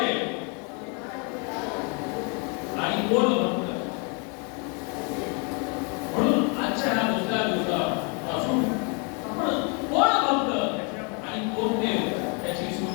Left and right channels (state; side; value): quieter; right; 35.1 dB